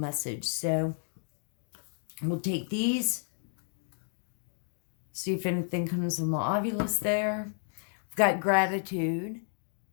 So we'll take these. See if anything comes on the ovulus there. We've got gratitude.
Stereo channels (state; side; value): silent; right; 57 dB below the other